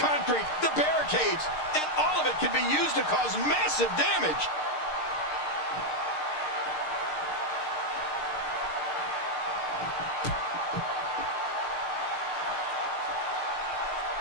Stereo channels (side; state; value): right; late; 6.6 ms